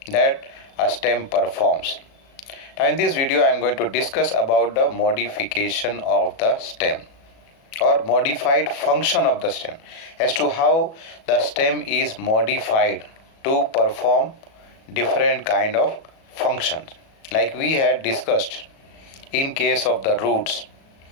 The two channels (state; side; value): late; right; 37 ms